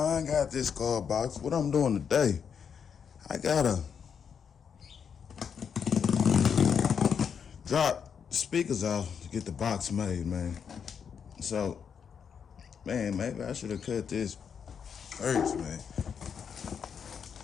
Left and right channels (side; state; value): right; quieter; 7.1 dB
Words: got this Skar box. What I'm doing today, I gotta drop the speakers off to get the box made, man. So, man, maybe I should have cut this first, man.